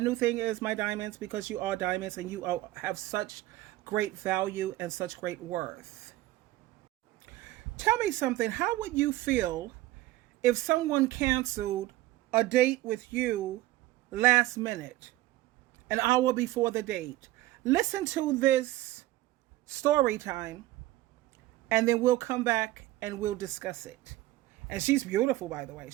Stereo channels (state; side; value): quieter; left; 16.8 dB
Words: thing is my diamonds because you are diamonds and you have such great value and such great worth. Tell me something. How would you feel if someone canceled a date with you last minute, an hour before the date? Listen to this story time and then we'll come back and we'll discuss it. And she's beautiful, by the way.